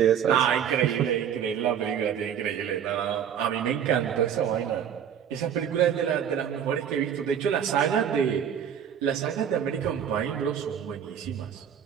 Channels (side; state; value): left; quieter; 8.7 dB